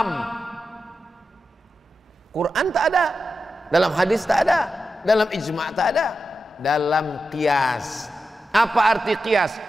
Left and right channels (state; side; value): normal; both; correlation 0.90